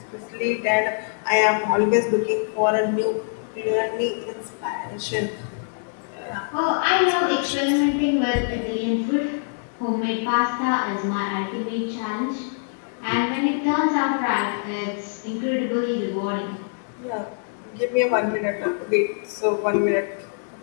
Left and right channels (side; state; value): right; silent; digital silence